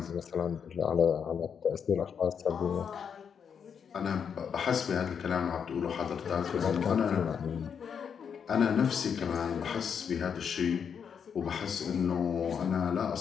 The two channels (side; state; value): right; quieter; 7.2 dB